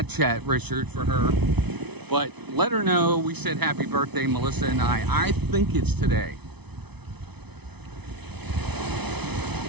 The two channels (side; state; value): left; late; 0.99 ms